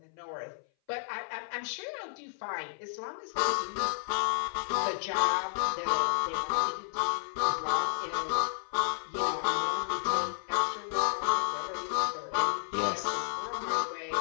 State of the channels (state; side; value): silent; right; 57 dB below the other